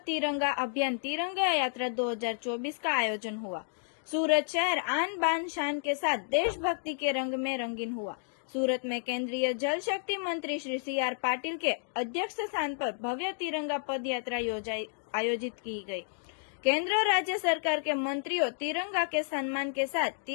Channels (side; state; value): right; silent; digital silence